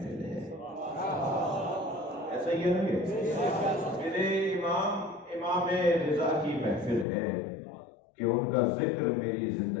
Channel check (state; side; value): drops out; right; at 7.1 s